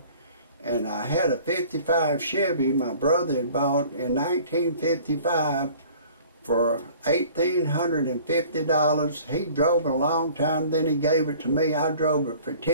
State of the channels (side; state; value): both; inverted; correlation -0.50